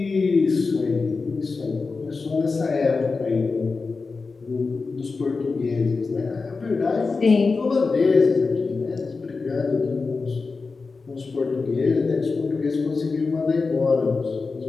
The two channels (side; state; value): right; quieter; 4.3 dB